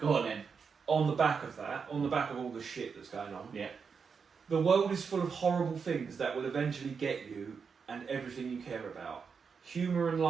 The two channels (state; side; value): quieter; left; 5.8 dB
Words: on then. On the back of that, on the back of all the shit that's going on. Yeah. The world is full of horrible things that will eventually get you and everything you care about. Humour and